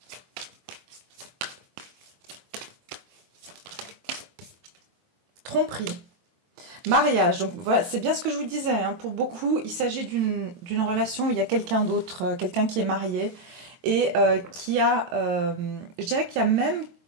Tromperie. Mariage. Donc, voilà, c'est bien ce que je vous disais. Hein. Pour beaucoup, il s'agit d'une relation où il y a quelqu'un d'autre, quelqu'un qui est marié et qui a... je dirais qu'il y a même...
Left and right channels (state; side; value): late; left; 23 ms